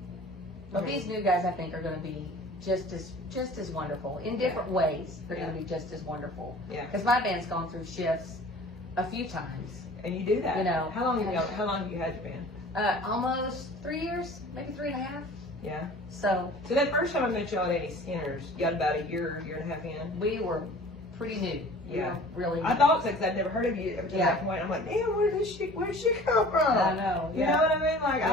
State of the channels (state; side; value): normal; both; correlation 0.45